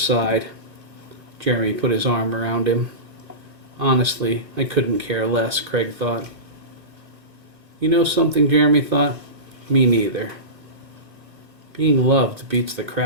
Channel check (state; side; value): late; left; 2.3 ms